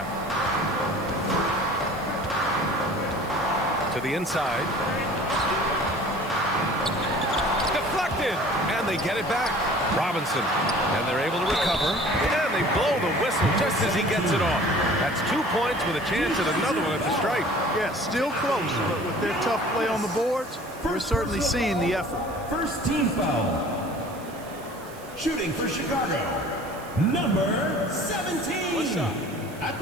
To the inside. Deflected. And they get it back. Robinson. And they're able to recover. And they blow the whistle just as he gets it off. That's 2 points with a chance at another one at the stripe. Yeah, still close, but with their tough play on the boards, we're certainly seeing the effort. First team foul. Shooting for Chicago, number 17. At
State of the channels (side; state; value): right; noise; hiss, 21 dB below the sound